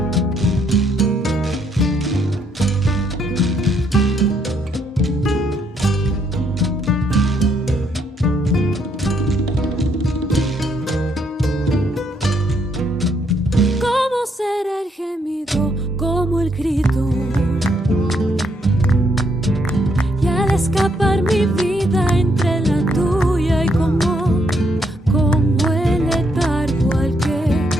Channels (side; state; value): both; normal; correlation 0.73